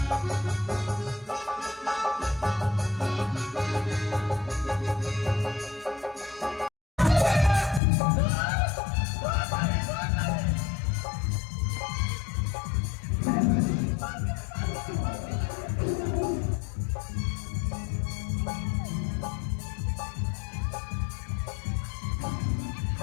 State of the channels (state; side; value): drops out; right; at 7.8 s